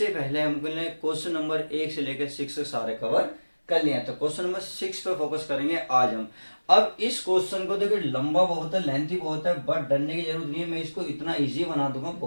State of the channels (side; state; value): both; inverted; correlation -1.00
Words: पहले हमने क्वेश्चन नंबर 1 से लेकर 6 सारे कवर कर लिया। तो क्वेश्चन नंबर 6 पे फोकस करेंगे आज हम। अब इस क्वेश्चन को देखिए लंबा बहुत है, लेंथी बहुत है, बट डरने की जरूरत नहीं है। मैं इसको इतना इजी बना दूंगा,